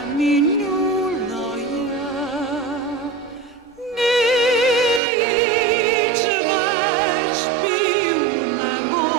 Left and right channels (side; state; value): left; drops out; at 5.0 s